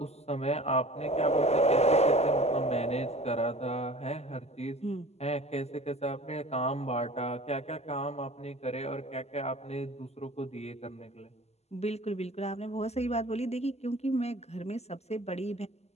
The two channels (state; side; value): late; right; 0.31 ms